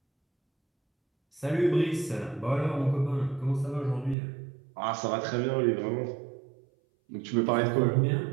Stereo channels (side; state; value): left; drops out; at 4.2 s